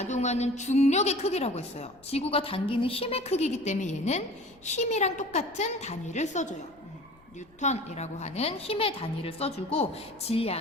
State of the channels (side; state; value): left; noise; rumble, 29 dB below the sound